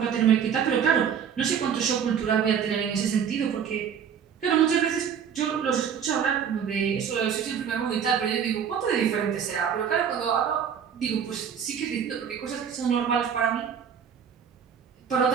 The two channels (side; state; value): left; quieter; 7.8 dB